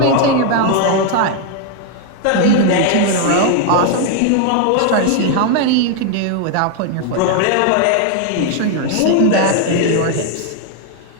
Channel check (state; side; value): different; both; correlation 0.01